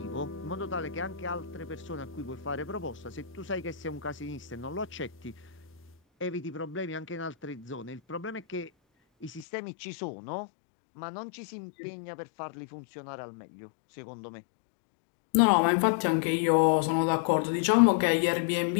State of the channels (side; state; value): right; drops out; at 9.5 s